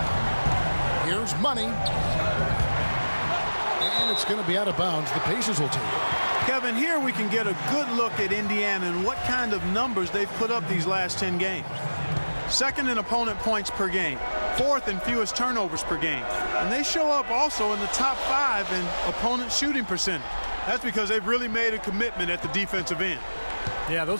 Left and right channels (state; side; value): inverted; both; correlation -1.00